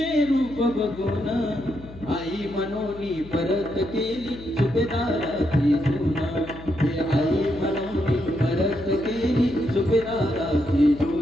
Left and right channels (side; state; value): left; noise; hum, 16 dB below the sound